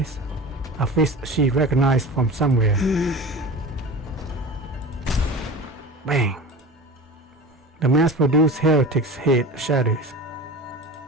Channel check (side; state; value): both; normal; correlation 0.34